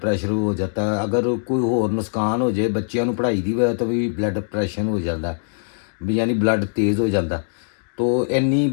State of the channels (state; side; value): silent; right; digital silence